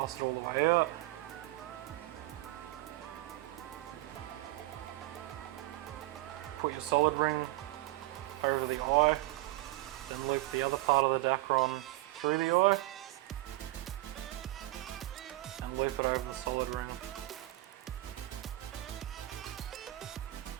it all the way out. Put your solid ring over the eye, then loop the other part of the Dacron through the eye and loop it over the solid ring.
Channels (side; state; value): left; quieter; 18.4 dB